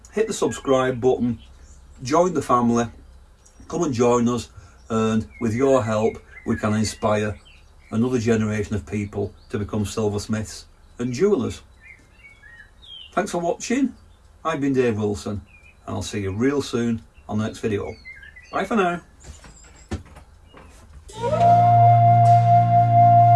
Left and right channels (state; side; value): identical; both; correlation 1.00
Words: hit the subscribe button, join the family, come and join us, and with your help we can inspire another generation of people to become silversmiths and jewellers. Thanks for watching. I've been Dave Wilson, and I'll see you real soon on the next video. Bye for now.